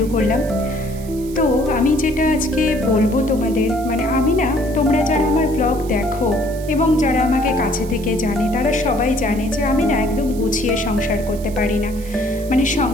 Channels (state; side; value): noise; right; hiss, 19 dB below the sound